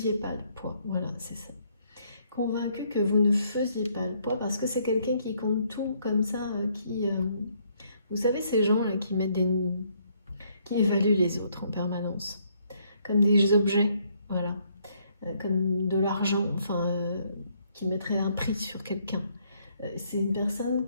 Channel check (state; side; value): inverted; both; correlation -0.69